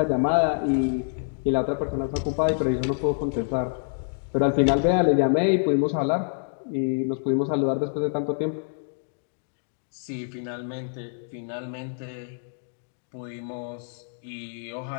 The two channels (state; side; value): silent; right; digital silence